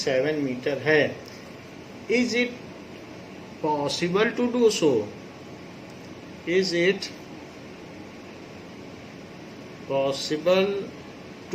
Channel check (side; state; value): both; identical; correlation 1.00